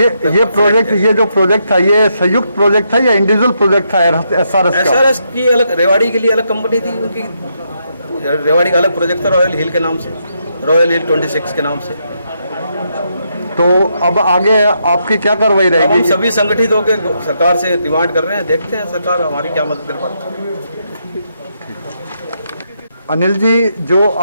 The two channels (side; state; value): both; inverted; correlation -0.79